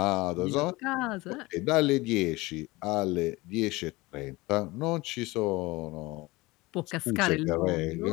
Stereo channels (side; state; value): right; quieter; 21.7 dB